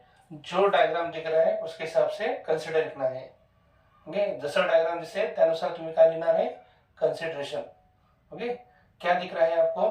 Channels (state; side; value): identical; both; correlation 1.00